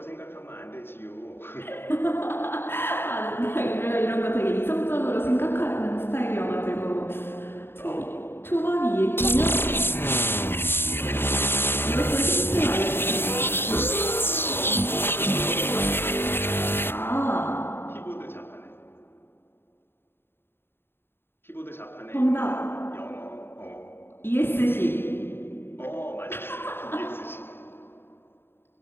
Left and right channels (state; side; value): late; right; 0.11 ms